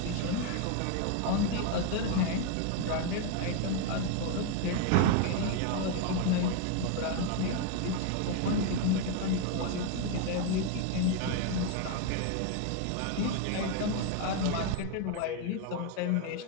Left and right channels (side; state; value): both; different; correlation 0.01